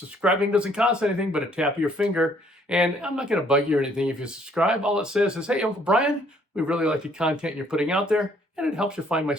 doesn't cost anything but a tap of your finger. And I'm not going to bug you or anything if you subscribe. All it says is, hey, Uncle Brian, we really like the content you're putting out there, and it helps you find my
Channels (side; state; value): both; normal; correlation 0.64